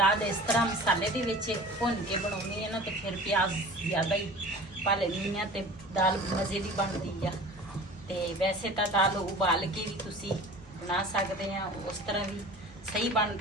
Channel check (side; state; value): both; normal; correlation 0.41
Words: इस तरह मसाले के भुन के बनानी है ना तो फिर प्याज ज़्यादा ही पा लेनी है तो दाल मज़े की बनती है। तो वैसे तो दाल उबाल के भी तुसी बना सकते हैं, उस तरह भी सही